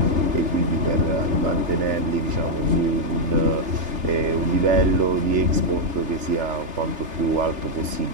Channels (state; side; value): late; left; 3.3 ms